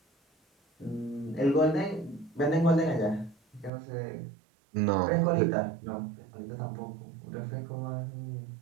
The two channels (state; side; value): drops out; left; at 3.7 s